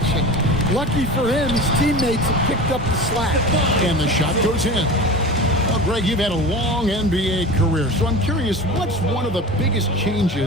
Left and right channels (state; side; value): normal; both; correlation 0.33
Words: Lucky for him, his teammates have picked up the slack. And the shot goes in. Well, Greg, you've had a long NBA career, so I'm curious, what's one of the biggest